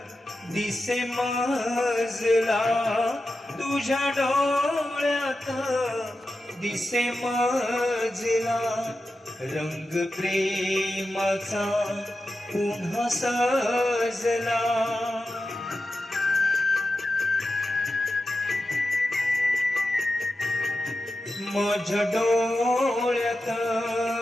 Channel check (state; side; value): normal; both; correlation 0.91